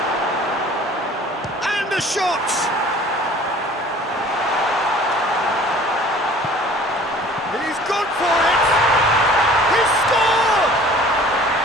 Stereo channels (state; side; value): normal; both; correlation 0.49